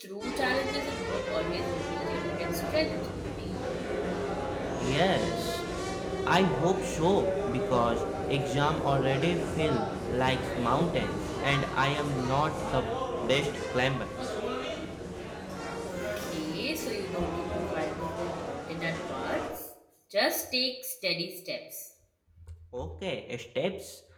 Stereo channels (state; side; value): identical; both; correlation 1.00